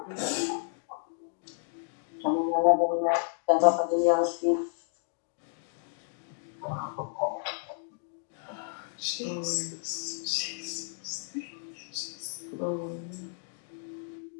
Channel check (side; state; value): right; silent; 57 dB below the other